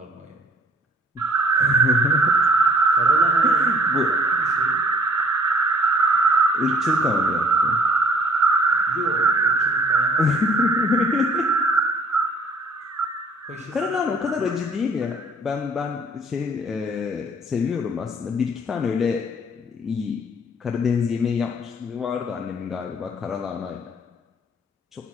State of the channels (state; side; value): normal; both; correlation 0.56